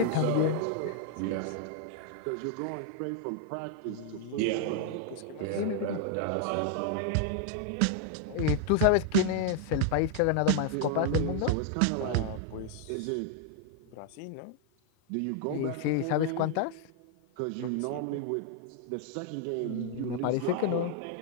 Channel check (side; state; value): both; different; correlation 0.00